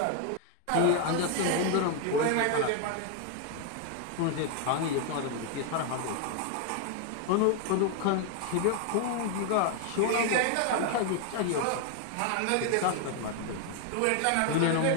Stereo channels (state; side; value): different; both; correlation 0.01